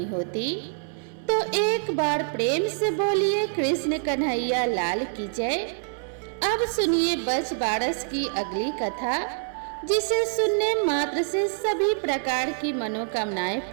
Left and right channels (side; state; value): left; silent; 61 dB below the other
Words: होती। तो एक बार प्रेम से बोलिए कृष्ण कन्हैया लाल की जय। अब सुनिए बच बारस की अगली कथा, जिसे सुनने मात्र से सभी प्रकार की मनोकामनाएं